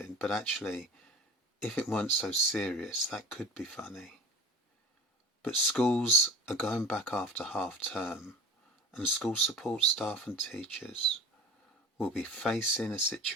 but actually, if it weren't so serious, that could be funny. But schools are going back after half term, and school support staff and teachers will be facing a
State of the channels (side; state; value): both; normal; correlation 0.36